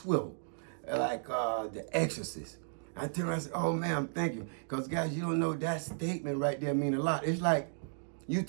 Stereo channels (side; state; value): left; silent; digital silence